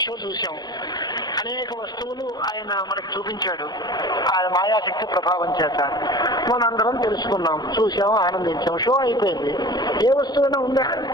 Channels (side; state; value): right; late; 0.20 ms